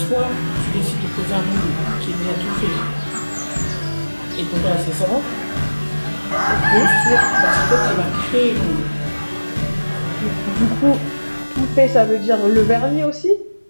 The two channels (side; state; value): both; inverted; correlation -1.00